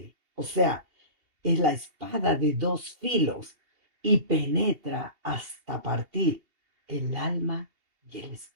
O sea, es la espada de dos filos y penetra hasta partir el alma y el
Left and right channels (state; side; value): late; left; 2.8 ms